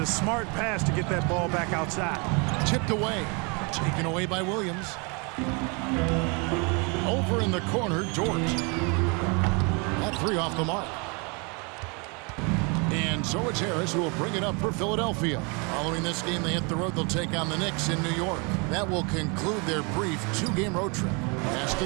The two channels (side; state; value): left; quieter; 32.0 dB